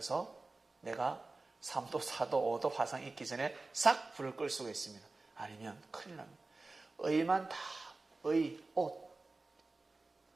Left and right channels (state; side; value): quieter; left; 3.4 dB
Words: 내가 3도, 4도, 5도 화상 있기 전에 싹 불을 끌 수가 있습니다. 아니면 큰일 납니다.